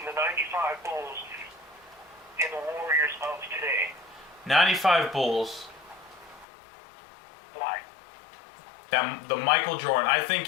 the 95 Bulls and the Warriors of today? 95 Bulls. Why? The Michael Jordan. I think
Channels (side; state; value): right; drops out; at 6.5 s